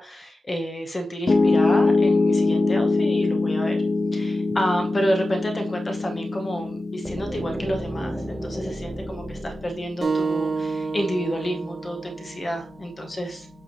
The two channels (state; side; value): normal; both; correlation 0.93